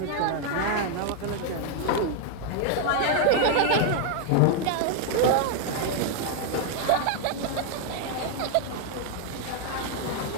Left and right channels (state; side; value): different; both; correlation 0.01